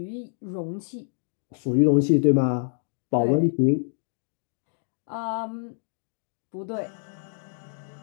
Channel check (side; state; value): right; silent; 56 dB below the other